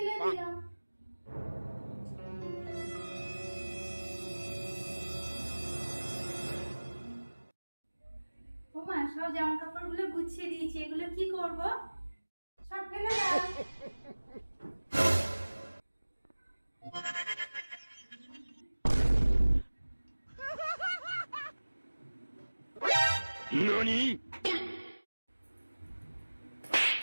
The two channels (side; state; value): both; inverted; correlation -1.00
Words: দিলাম। ওমা, সব জামা কাপড়গুলো গুছিয়ে দিয়েছি, এগুলো কি করব? সব ফেলে দাও। NANI?!